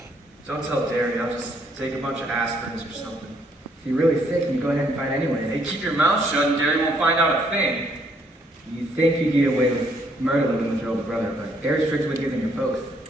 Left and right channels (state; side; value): normal; both; correlation 0.69